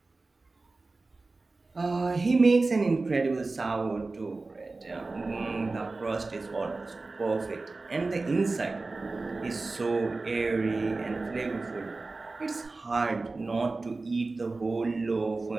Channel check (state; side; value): quieter; left; 3.5 dB